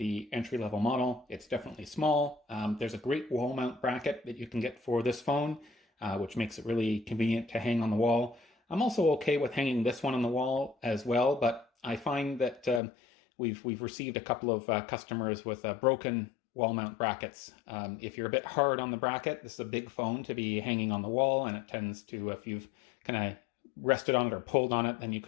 entry-level model, it's definitely small. There's a great wall mount bracket that you can get for this phone, which makes it really convenient to hang on the wall. I'm also okay with hanging this one on the wall as well, but I find that we've received a couple of customers with broken wall mount brackets. If you're a bit hard on the bracket, this is a big phone to be hanging on the wall, and it tends to, if you've kind of rested on it or pulled on it, then you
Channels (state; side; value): drops out; right; at 12.8 s